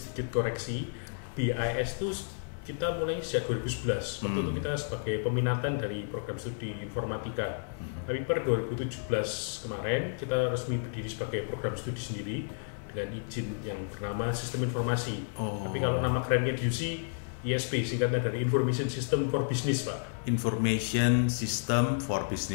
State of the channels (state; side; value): silent; right; 57 dB below the other